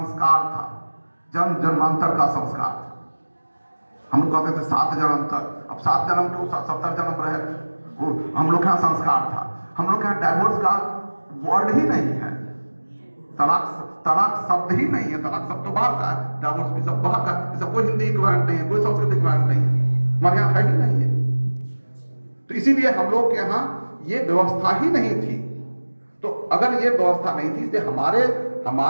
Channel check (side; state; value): both; inverted; correlation -1.00